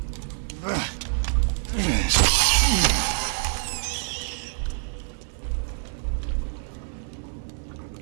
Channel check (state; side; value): silent; left; digital silence